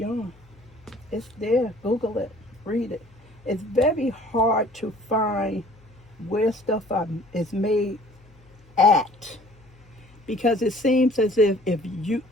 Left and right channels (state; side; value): noise; left; hum, 27 dB below the sound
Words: It's there. Google it. Read it. It's very hard to find where stuff is made at, because it seems as if